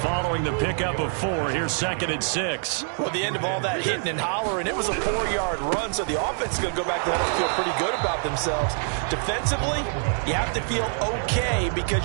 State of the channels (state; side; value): silent; left; 62 dB below the other